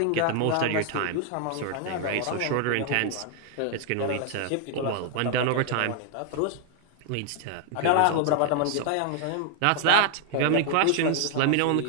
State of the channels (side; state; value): both; different; correlation 0.00